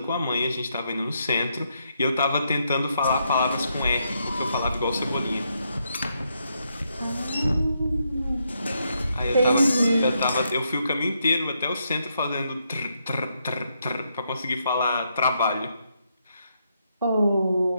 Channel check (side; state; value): both; inverted; correlation -0.79